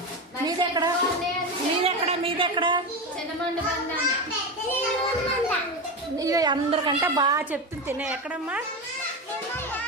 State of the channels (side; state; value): both; normal; correlation 0.18